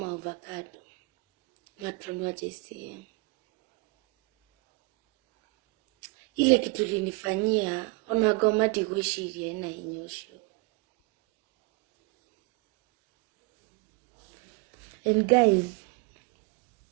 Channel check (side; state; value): left; quieter; 26.9 dB